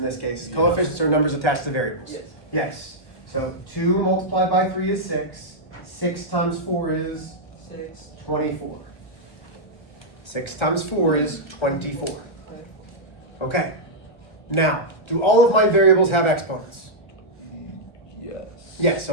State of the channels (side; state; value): right; late; 1.4 ms